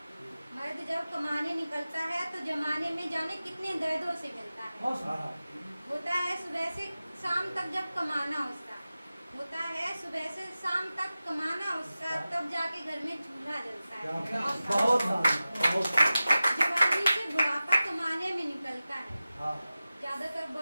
मर्द जब कमाने निकलता है तो जमाने में जाने कितने दर्दों से मिलता है। होता है सुबह से शाम तक जब कमाना उसका, होता है सुबह से शाम तक कमाना उसका, तब जाके घर में चूल्हा जलता है। जवानी से बुढ़ापा कमाने में निकलता है। ज्यादातर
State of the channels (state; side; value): inverted; both; correlation -0.96